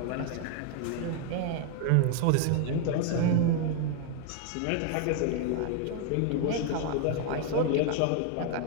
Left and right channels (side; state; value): both; different; correlation 0.00